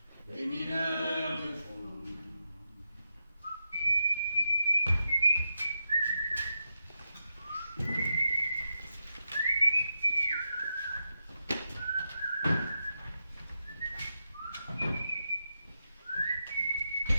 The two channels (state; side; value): inverted; both; correlation -0.87